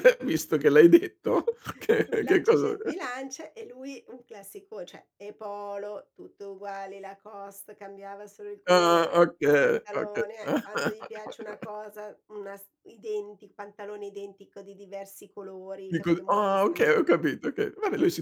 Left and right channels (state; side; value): identical; both; correlation 1.00